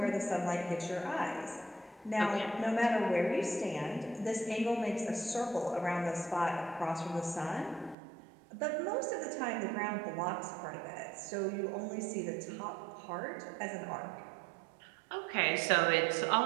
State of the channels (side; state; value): left; drops out; at 8.0 s